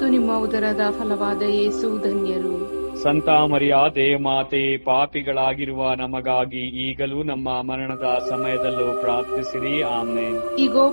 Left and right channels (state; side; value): inverted; both; correlation -1.00